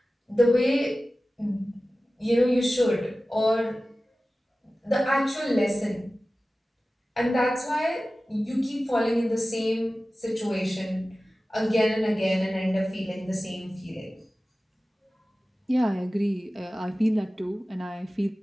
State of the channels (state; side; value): normal; both; correlation 0.96